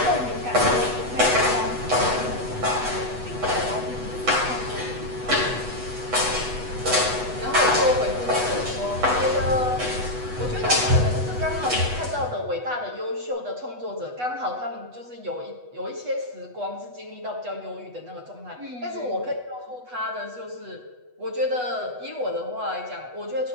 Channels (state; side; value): late; left; 8.1 ms